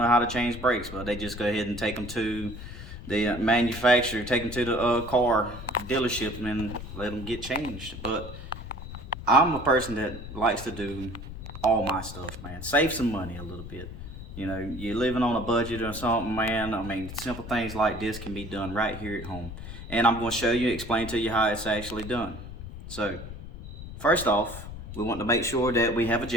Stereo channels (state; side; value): noise; left; rumble, 11 dB below the sound